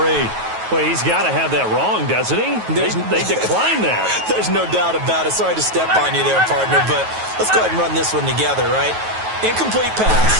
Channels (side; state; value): left; late; 9.3 ms